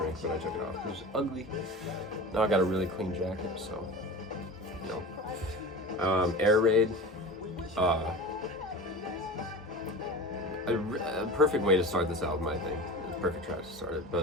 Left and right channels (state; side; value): normal; both; correlation 0.32